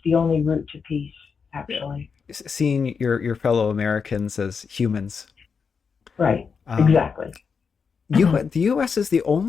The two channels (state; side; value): quieter; right; 5.8 dB